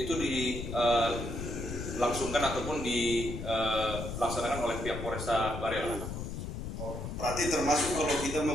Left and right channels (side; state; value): left; noise; rumble, 6 dB below the sound